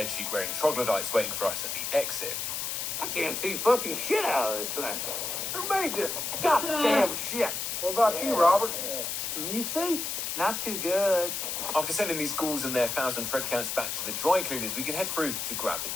troglodytes waiting for us at the exit. I can't see fucking shit out of this thing. Who made this goddamn shit? What about you, Robert? Can you see? Not too good. After sending these ghouls and their 1,000 thread counts back to the dry cleaners, we can head through to grab the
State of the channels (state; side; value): noise; left; hiss, 3 dB below the sound